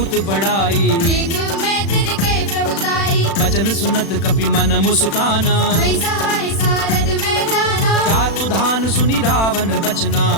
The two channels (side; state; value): right; late; 36 ms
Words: बड़ाई देखो मैं तिनके प्रभुताई बचन सुनत कपि मन मुस्काना वही सहाय सारद में जाना जातु धान सुनि रावण बचना